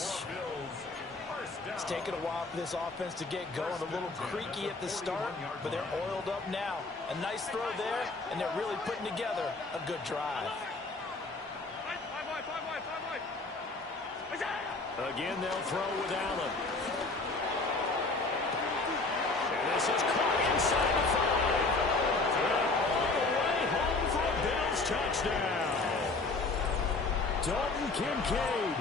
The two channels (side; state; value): right; quieter; 3.5 dB